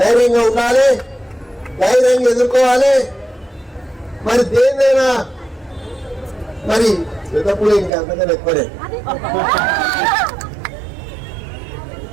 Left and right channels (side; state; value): left; drops out; at 7.9 s